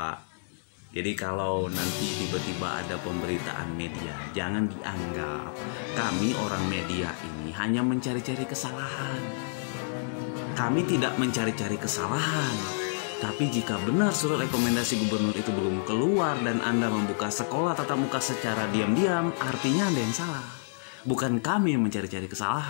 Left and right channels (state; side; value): silent; right; digital silence